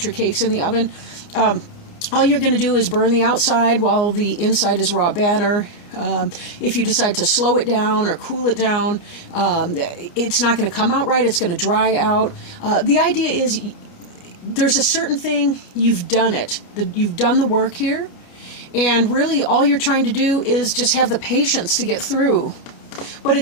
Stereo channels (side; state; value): right; late; 29 ms